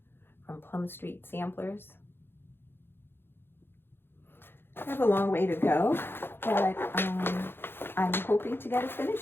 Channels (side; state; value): right; late; 0.10 ms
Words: from Plum Street Samplers. I have a long way to go, but I'm hoping to get it